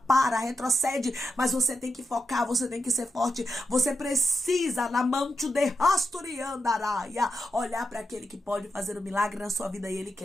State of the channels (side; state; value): both; normal; correlation 0.87